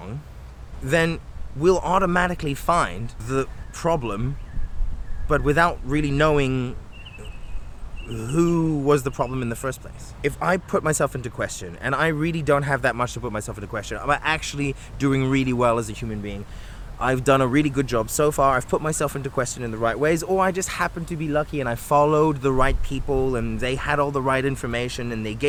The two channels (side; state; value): both; identical; correlation 1.00